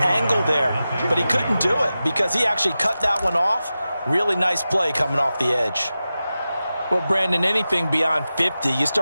there. But he couldn't do it because he actually cut that one off. Really nice play coming off the edge. Well, Brandon, anything beyond 50, you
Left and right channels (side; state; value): both; inverted; correlation -0.94